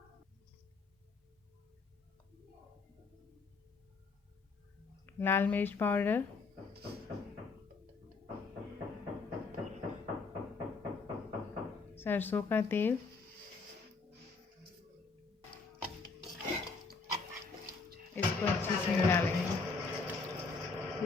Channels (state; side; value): quieter; right; 4.3 dB